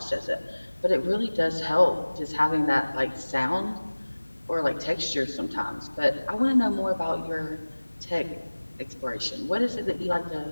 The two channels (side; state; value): both; inverted; correlation -1.00